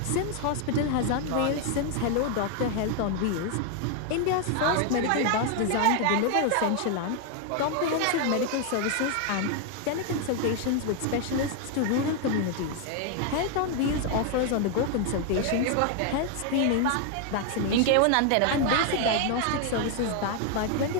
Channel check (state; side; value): different; both; correlation 0.00